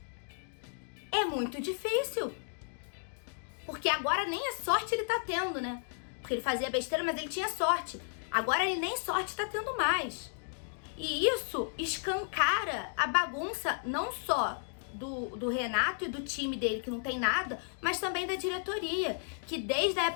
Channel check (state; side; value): silent; right; digital silence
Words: é muito difícil. Porque agora nem a sorte ele tá tendo, né? Porque ele fazia besteira, mas ele tinha sorte. Agora ele nem sorte tá tendo mais. E isso escancara a bagunça não só do Renato e do time dele, que não tem nada, mas também da diretoria, que desde a